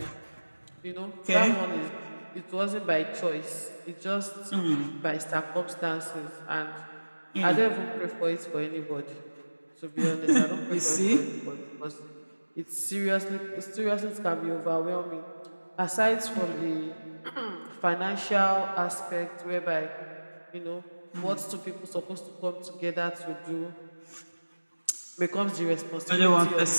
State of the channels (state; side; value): inverted; both; correlation -1.00